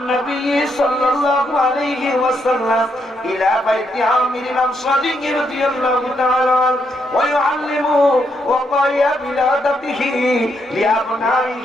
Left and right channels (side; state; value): both; normal; correlation 0.77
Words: صلى الله عليه وسلم الى بيت عامر الانصاري رضي الله تعالى عنه ويعلمه وقايا بلادته